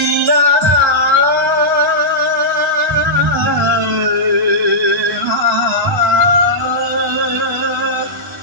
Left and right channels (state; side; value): normal; both; correlation -0.13